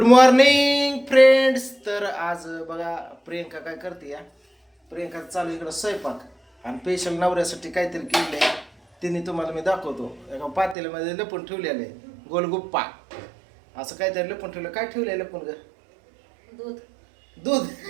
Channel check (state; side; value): drops out; left; at 10.8 s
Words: morning friends. तर आज बघा प्रियंका काय करते या. प्रियंका चालू इकडं स्वयंपाक आणि स्पेशल नवऱ्यासाठी काहीतरी केलंय. तिने तुम्हाला मी दाखवतो. एका पातेल्यामध्ये लपून ठेवलेलं आहे गोलगुप्पा. असं काहीतरी लपून ठेवलं. काय ठेवलंय लपून ग? दूध.